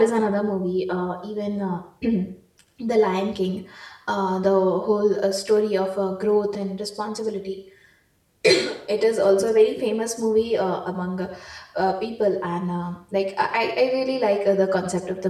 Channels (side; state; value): both; identical; correlation 1.00